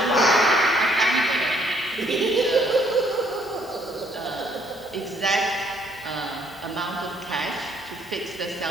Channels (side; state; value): both; normal; correlation 0.66